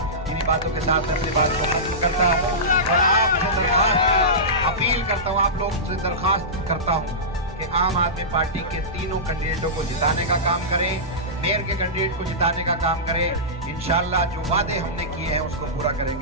इन्हीं बातों के साथ अपनी बात को खत्म करता हूँ और आपसे अपील करता हूँ, आप लोग से दरखास्त करता हूँ कि आम आदमी पार्टी के तीनों कैंडिडेटों को जिताने का काम करें, मेयर के कैंडिडेट को जिताने का काम करें। इंशाल्लाह जो वादे हमने किए हैं उसको पूरा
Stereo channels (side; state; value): both; normal; correlation -0.17